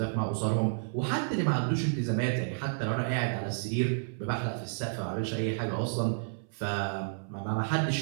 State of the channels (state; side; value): silent; left; 57 dB below the other